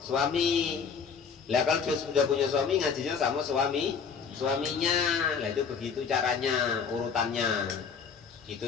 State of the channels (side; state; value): right; quieter; 6.1 dB